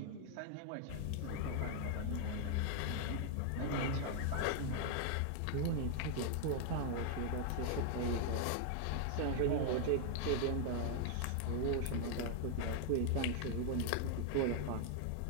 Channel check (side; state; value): both; different; correlation 0.00